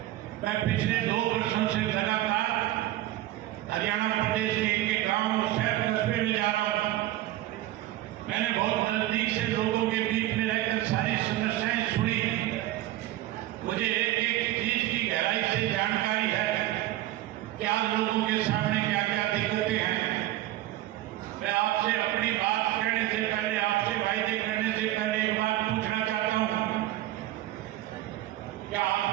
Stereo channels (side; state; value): left; quieter; 15.0 dB